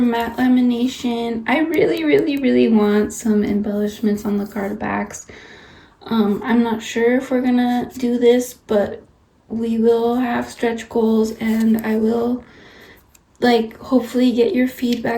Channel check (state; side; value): identical; both; correlation 1.00